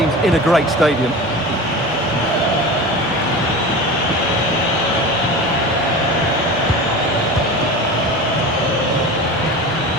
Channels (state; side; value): normal; both; correlation 0.31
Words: in a great stadium.